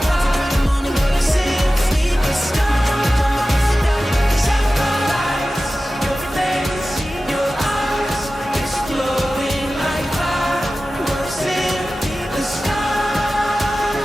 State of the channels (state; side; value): normal; both; correlation 0.95